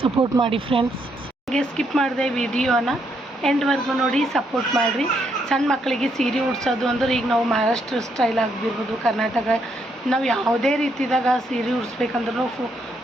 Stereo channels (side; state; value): both; normal; correlation 0.75